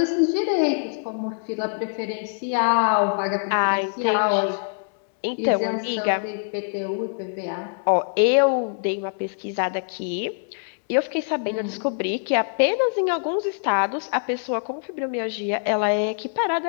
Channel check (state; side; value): silent; right; digital silence